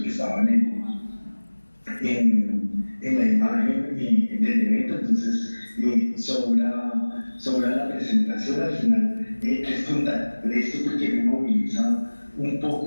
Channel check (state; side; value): inverted; both; correlation -1.00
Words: estaban en la imagen del evento, entonces sobra la presentación al final. Es contar esto porque me moviliza un